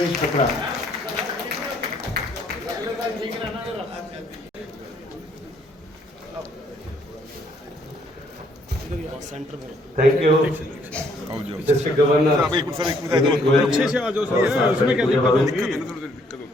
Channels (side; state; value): both; normal; correlation 0.67